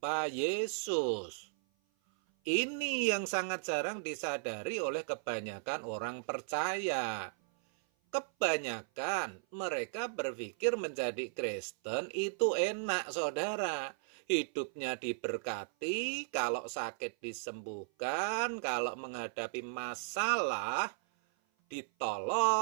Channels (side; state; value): left; silent; 54 dB below the other